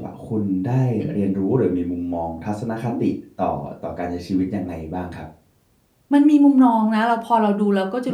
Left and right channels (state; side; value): identical; both; correlation 1.00